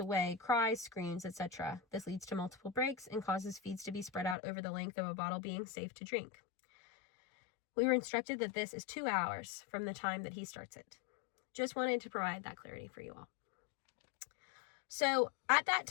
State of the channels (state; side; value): drops out; right; at 4.4 s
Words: cries, screams, etc. This leads to multiple breaks and causes feeds to be spread out over the length of a bottle being safe to drink. We were instructed that this is 2 hours from the time that he starts it. Just wanted to provide that clarity for you all." So at that